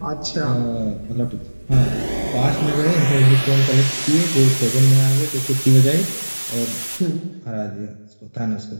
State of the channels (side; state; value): both; inverted; correlation -1.00